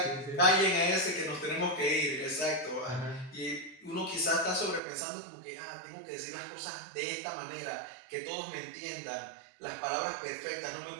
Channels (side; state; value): left; drops out; at 4.8 s